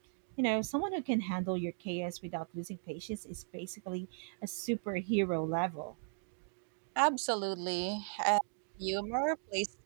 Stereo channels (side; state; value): left; silent; digital silence